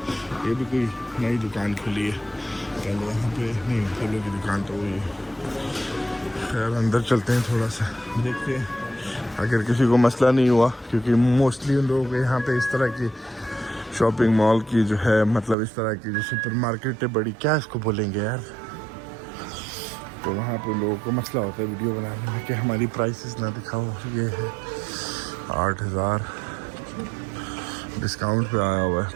ये भी कोई नई दुकान खुली है, पहले यहाँ पे नहीं, फूलों की दुकान तो वही है। खैर अंदर चलते हैं, थोड़ा सा देखते हैं अगर किसी को मसला नहीं हुआ, क्योंकि मोस्टली उन लोगों के यहाँ पे इस तरह की शॉपिंग मॉल की जो है, मतलब इस तरह की जो सुपर मार्केट है बड़ी, क्या इसको बोलेंगे यार, तो वहाँ पे लोगों को मसला होता है वीडियो बनाने में कि हमारी प्राइसेस ना दिखाओ। ये है 8,000 डिस्काउंट पे आया हुआ है,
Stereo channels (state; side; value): drops out; left; at 15.6 s